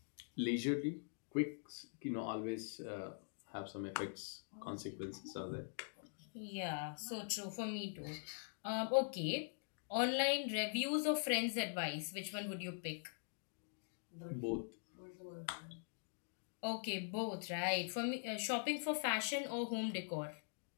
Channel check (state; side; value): silent; right; digital silence